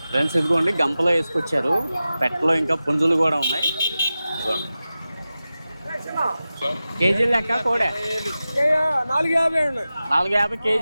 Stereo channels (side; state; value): both; inverted; correlation -0.94